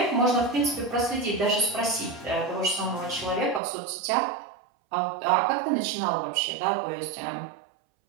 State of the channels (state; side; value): drops out; left; at 3.6 s